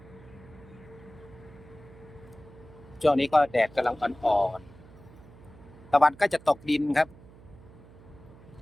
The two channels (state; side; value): noise; right; hum, 21 dB below the sound